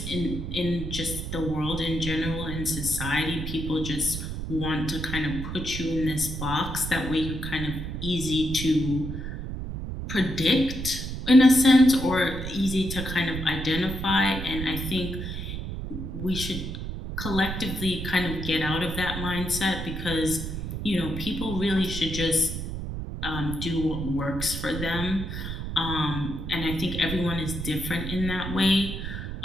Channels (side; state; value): right; noise; rumble, 6 dB below the sound